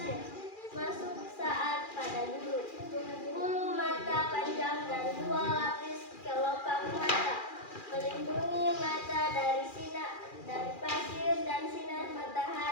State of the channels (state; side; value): late; right; 2.4 ms